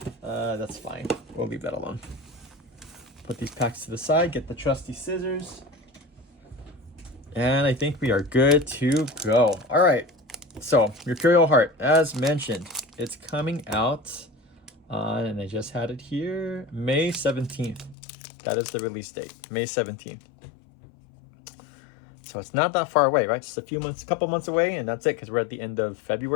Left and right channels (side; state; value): right; drops out; at 17.9 s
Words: That's fine. We'll leave that alone. Put these packs to the side, get the trusty scissors. And I think we are good to go. All right. So, Mercurial Heart, as mentioned, it's coming out on, and I just had it here, May 17th. That is the release date, May 17th. So it's not that far away, right? Just a couple months away, and that's it, because we're at the end of